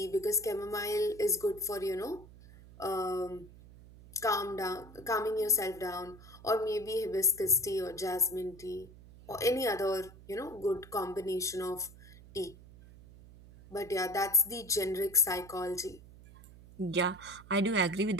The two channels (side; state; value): right; noise; hum, 20 dB below the sound